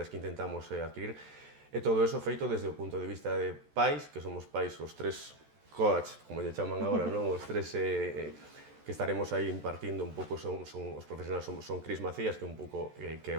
que intentamos adquirir. E todo eso feito desde o punto de vista de pais, que somos pais os tres coach, como lle chaman agora, non? Os tres que estaremos aí impartindo un pouco son os profesionais, son Cris Macías, que é un pouco que é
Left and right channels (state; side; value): late; left; 14 ms